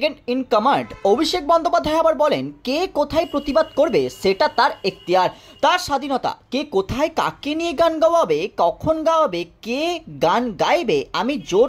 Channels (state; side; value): identical; both; correlation 1.00